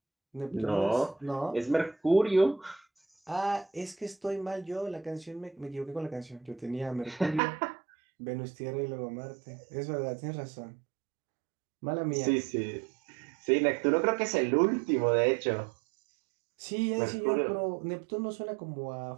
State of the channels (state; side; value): drops out; left; at 7.4 s